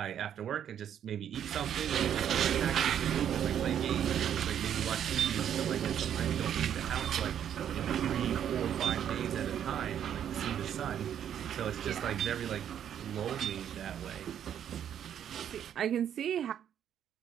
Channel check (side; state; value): left; quieter; 9.5 dB